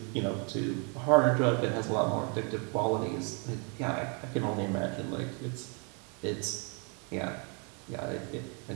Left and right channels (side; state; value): left; quieter; 36.0 dB